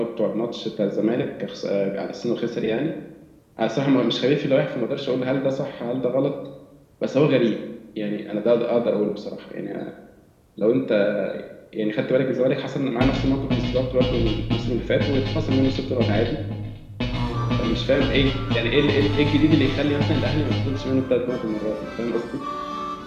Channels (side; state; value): both; identical; correlation 1.00